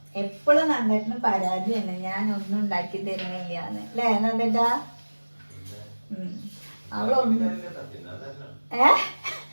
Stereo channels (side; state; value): both; inverted; correlation -1.00